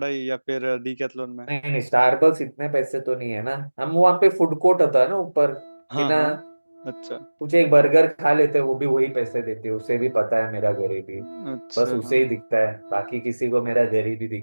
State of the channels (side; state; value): both; inverted; correlation -1.00